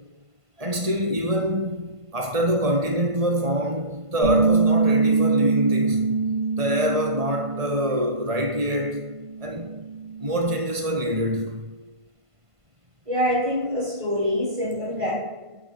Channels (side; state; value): left; late; 1.5 ms